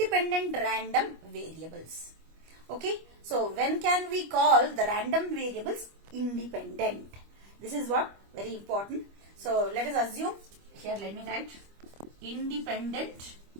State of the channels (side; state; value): left; late; 25 ms